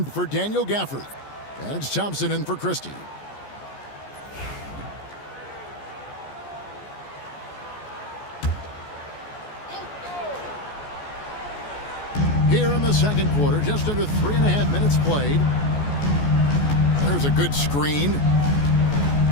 for Daniel Gafford. And it's Thompson in for Christie. Here in the second quarter, just under 3.5 minutes played. There's a good screen.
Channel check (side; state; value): right; late; 14 ms